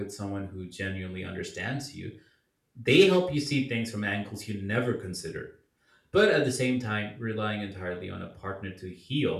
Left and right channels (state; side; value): identical; both; correlation 1.00